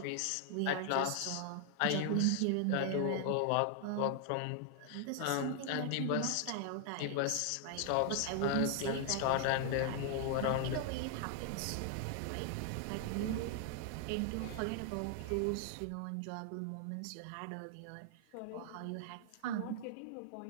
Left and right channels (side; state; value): both; different; correlation 0.00